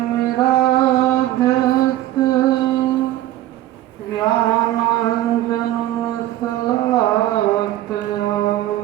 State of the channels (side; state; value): left; quieter; 14.3 dB